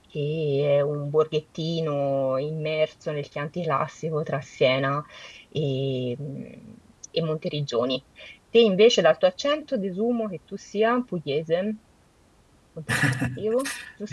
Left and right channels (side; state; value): both; identical; correlation 1.00